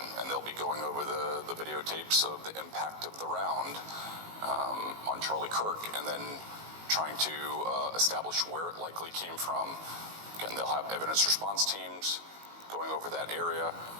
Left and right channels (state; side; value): late; left; 19 ms